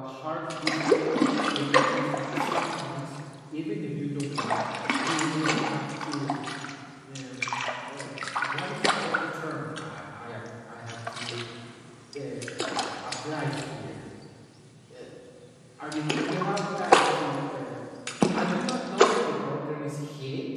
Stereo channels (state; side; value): identical; both; correlation 1.00